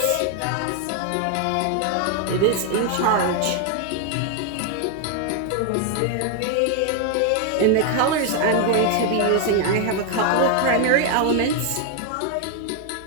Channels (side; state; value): both; different; correlation 0.00